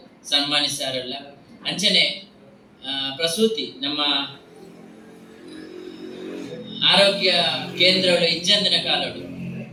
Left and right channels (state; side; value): identical; both; correlation 1.00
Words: ಸನ್ಮಾನಿಸಾರಲ್ಲ. ಅಂಚನೆ ಪ್ರಸೂತಿ ನಮ್ಮ ಆರೋಗ್ಯ ಕೇಂದ್ರಗಳು ಇಜ್ಜಂದಿನ ಕಾಲಡು